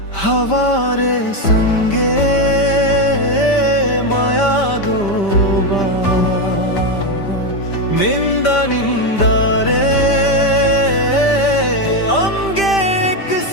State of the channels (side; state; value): right; late; 5.1 ms